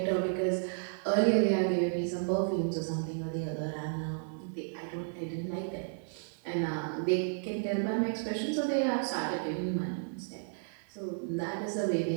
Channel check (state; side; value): silent; left; digital silence